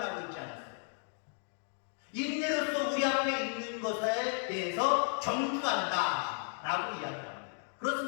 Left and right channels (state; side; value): silent; right; 55 dB below the other